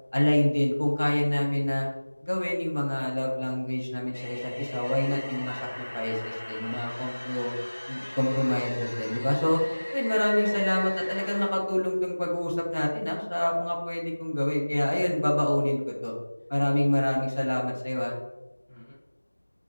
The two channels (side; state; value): both; inverted; correlation -1.00